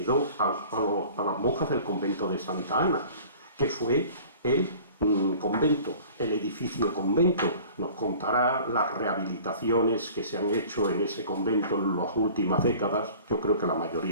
a las monjas del convento de Santa Ana, que fue el convento, el edificio convento. Nos contará las rehabilitaciones que se han hecho en ese convento en las últimas décadas, yo creo que la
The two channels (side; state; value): both; inverted; correlation -0.46